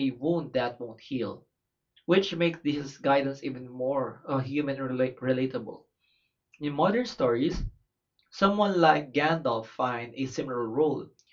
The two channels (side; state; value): both; identical; correlation 1.00